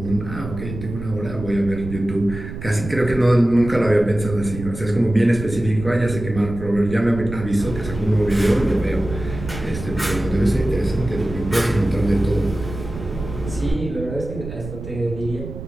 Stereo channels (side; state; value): right; noise; rumble, 10 dB below the sound